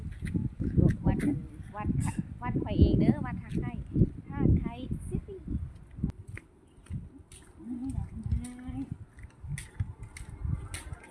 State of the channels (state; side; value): identical; both; correlation 1.00